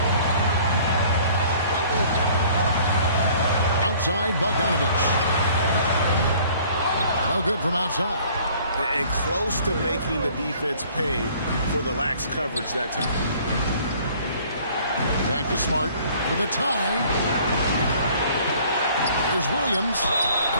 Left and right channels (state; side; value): inverted; both; correlation -0.54